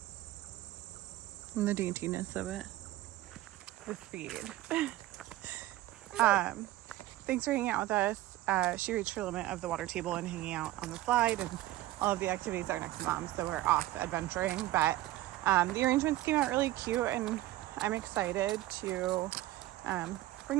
And the daintiness of it. The speed. Thanks for hanging out with us. She reached her limit of the water table and hanging out on the slide, and all of the activities are next to Mom, so we're off adventuring. But the arrangements came out really cute, and I'm excited to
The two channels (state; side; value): quieter; left; 16.0 dB